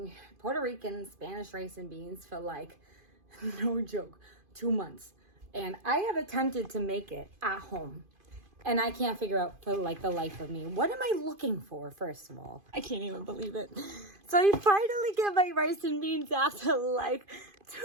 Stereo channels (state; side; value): late; left; 2.5 ms